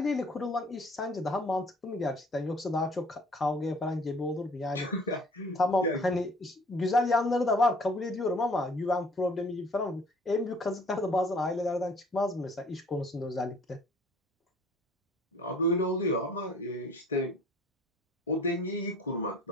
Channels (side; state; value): both; normal; correlation 0.54